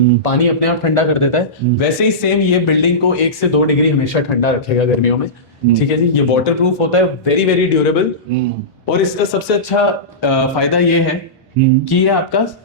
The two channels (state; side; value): normal; both; correlation -0.18